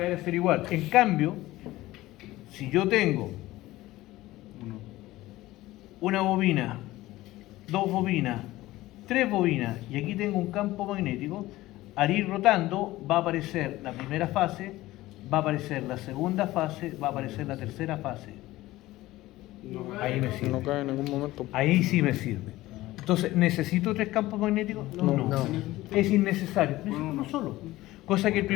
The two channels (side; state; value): right; quieter; 17.3 dB